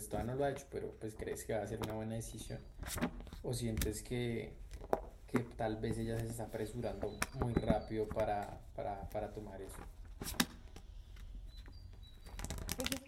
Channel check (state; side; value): identical; both; correlation 1.00